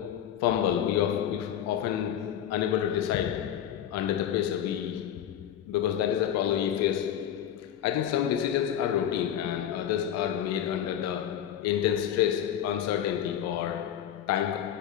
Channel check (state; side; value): quieter; right; 10.0 dB